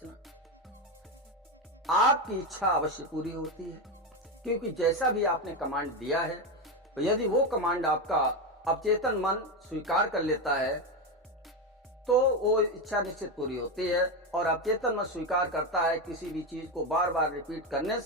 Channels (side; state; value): both; normal; correlation 0.13